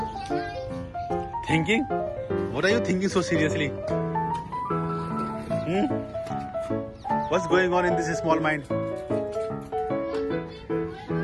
Thinking? What are you thinking so seriously? What's going on in this small mind?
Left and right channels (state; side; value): identical; both; correlation 1.00